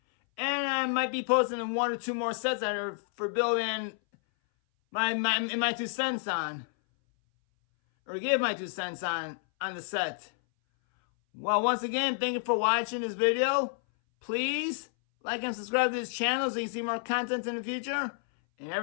And I might be posting 1 or 2 more sets that are for building my 2 cents on. Or give my 2 cents on the set. Well, once again, thank you for watching this video. Please like and subscribe to this channel so you can see more content in the future. And have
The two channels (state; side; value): silent; right; 58 dB below the other